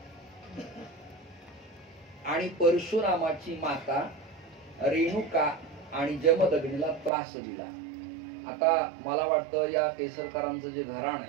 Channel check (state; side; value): drops out; left; at 7.1 s